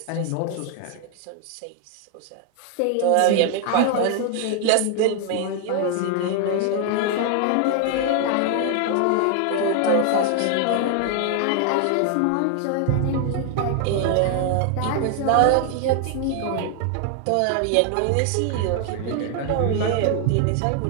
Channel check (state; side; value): different; both; correlation 0.00